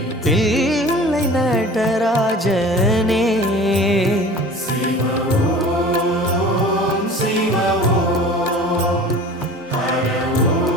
தில்லை நடராஜனே சிவ ஓம் சிவ ஓம் ஹர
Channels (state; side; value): normal; both; correlation 0.41